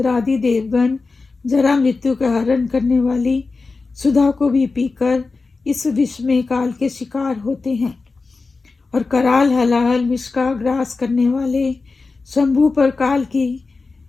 देवगण जरा मृत्यु का हरण करने वाली सुधा को भी पीकर इस विश्व में काल के शिकार होते हैं और कराल हलाहल विष का ग्रास करने वाले शंभु पर काल की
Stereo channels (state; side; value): quieter; right; 4.0 dB